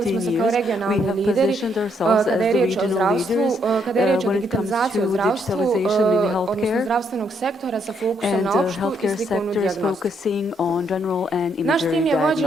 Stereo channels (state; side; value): normal; both; correlation 0.73